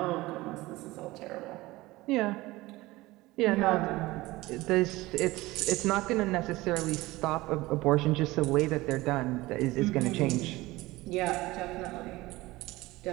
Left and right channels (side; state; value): left; quieter; 19.6 dB